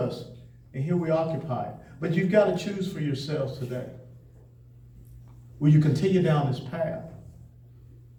and here we occupy it. But you've got to choose for yourselves today. Will you continue down this path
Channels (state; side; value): identical; both; correlation 1.00